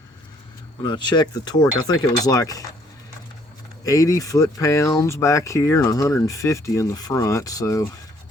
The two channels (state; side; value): normal; both; correlation 0.64